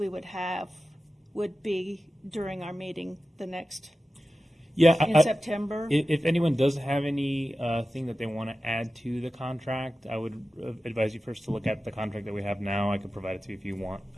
would have would be during our meeting the next in September. If anyone does have any thing that they want to add to the contract, I would advise you first to look at the contract that we have now. I could provide it to you if you want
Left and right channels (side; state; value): both; normal; correlation 0.94